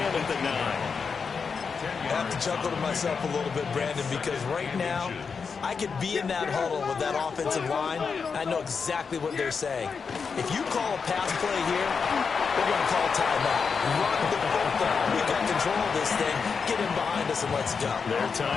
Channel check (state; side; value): quieter; right; 5.6 dB